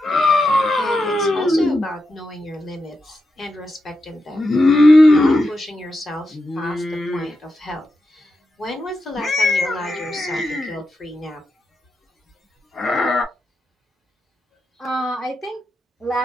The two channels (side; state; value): both; normal; correlation 0.88